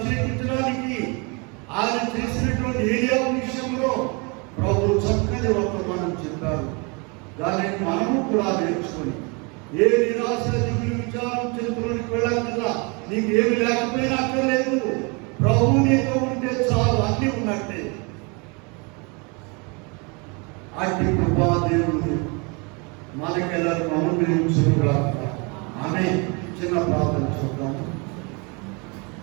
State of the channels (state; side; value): quieter; left; 31.1 dB